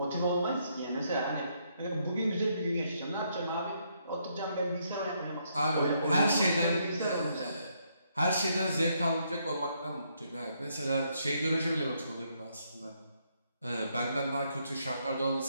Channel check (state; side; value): inverted; both; correlation -0.74